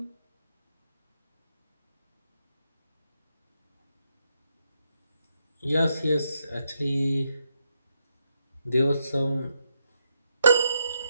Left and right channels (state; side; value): inverted; both; correlation -0.81